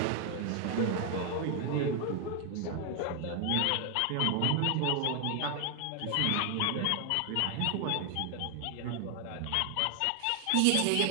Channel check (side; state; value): both; different; correlation 0.00